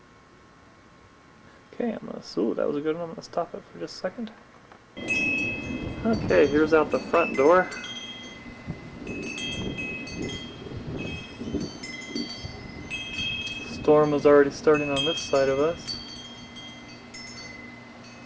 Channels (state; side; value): identical; both; correlation 1.00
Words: Okay, ooh, that was a good one. I'm gonna stop it for just a second. Okay, here's out the front door. Storm was already starting on this side of us.